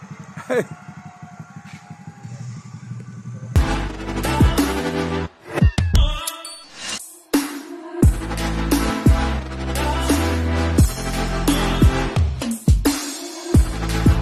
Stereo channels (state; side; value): identical; both; correlation 1.00